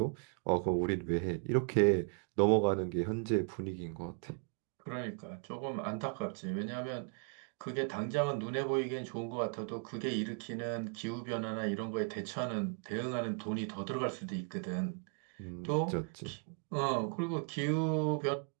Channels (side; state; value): left; quieter; 39.8 dB